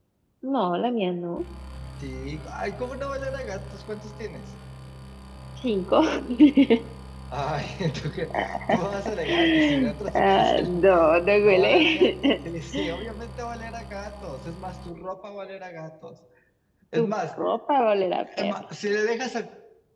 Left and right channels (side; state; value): both; identical; correlation 1.00